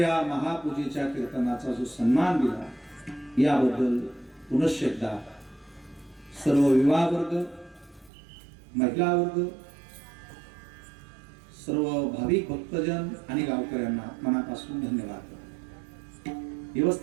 महापूजेच्या कीर्तनाचा जो सन्मान दिला याबद्दल पुनश्च एकदा सर्व विवाह वर्ग, महिला वर्ग, सर्व भाविक भक्तजन आणि गावकऱ्यांना मनापासून धन्यवाद करतो.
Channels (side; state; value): left; drops out; at 8.1 s